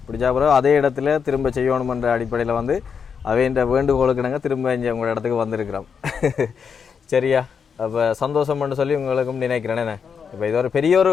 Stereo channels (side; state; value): right; quieter; 6.5 dB